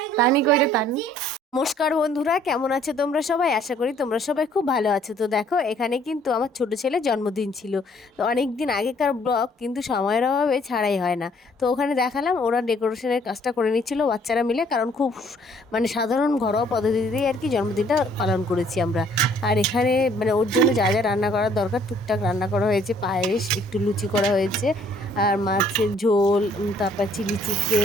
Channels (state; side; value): normal; both; correlation 0.61